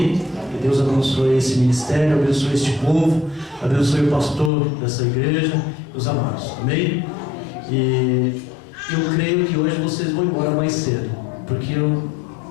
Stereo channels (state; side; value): drops out; right; at 4.5 s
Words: Que Deus abençoe esse ministério, abençoe este povo, abençoe o pastor dessa igreja, os amados. Amém? E eu creio que hoje vocês vão embora mais cedo, porque eu